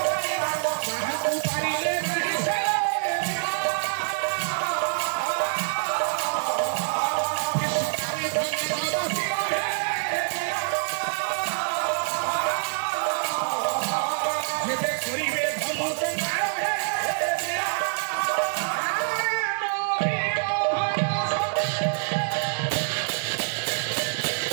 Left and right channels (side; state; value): left; silent; digital silence